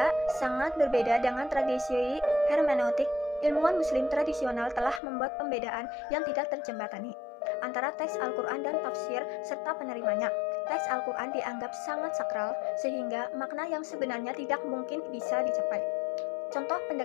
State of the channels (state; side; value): drops out; right; at 5.0 s